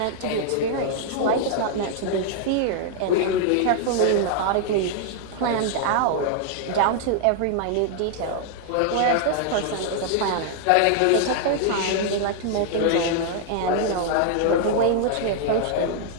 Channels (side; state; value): both; different; correlation -0.01